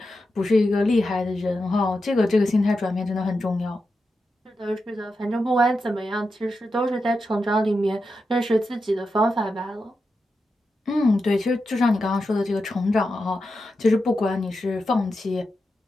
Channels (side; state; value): both; normal; correlation 0.88